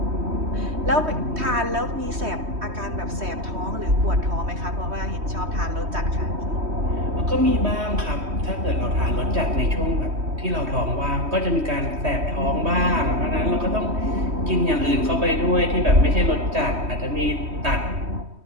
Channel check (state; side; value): late; left; 3.2 ms